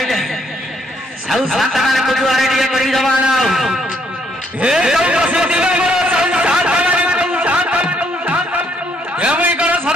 साउ शांता माने को जुआरे दिए करी जमाना हे कौ बसे दिवा मोर साउ शांता माने कौ शांता हे मैं करो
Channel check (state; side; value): normal; both; correlation 0.70